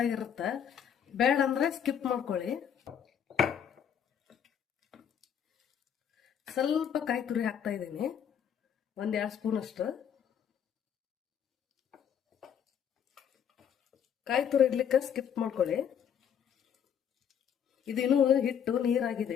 ಆಗಿರುತ್ತೆ, ಬೇಡ ಅಂದ್ರೆ ಸ್ಕಿಪ್ ಮಾಡ್ಕೊಳ್ಳಿ. ಸ್ವಲ್ಪ ಕಾಯಿ ತುರಿ ಹಾಕ್ತಾ ಇದ್ದೀನಿ, 1-2 ಸ್ಪೂನ್ ಅಷ್ಟು. ಕಾಯಿ ತುರಿ ಇಡ್ಲಿಕ್ಕೆ ಸ್ಕಿಪ್ ಮಾಡ್ಕೊಳ್ಳಿ. ಇದಿನ್ನೂ ಹಿಟ್ಟು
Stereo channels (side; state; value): right; quieter; 8.5 dB